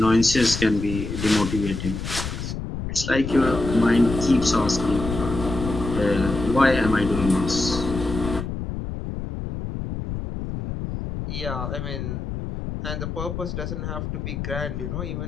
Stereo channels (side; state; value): left; noise; rumble, 6 dB below the sound